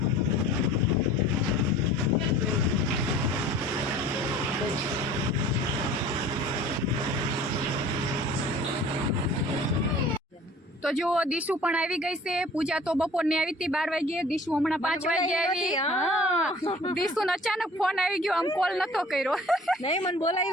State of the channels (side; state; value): both; normal; correlation 0.47